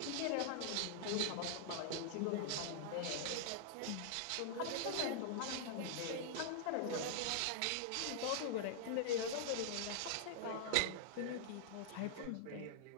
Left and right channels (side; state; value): both; different; correlation -0.01